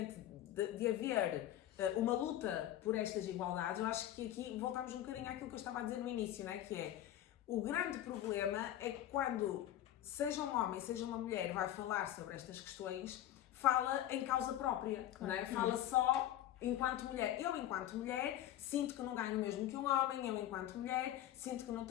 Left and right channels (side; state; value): right; quieter; 12.6 dB